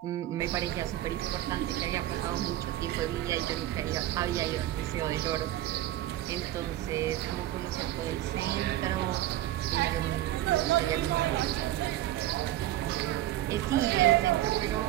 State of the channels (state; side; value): quieter; left; 14.2 dB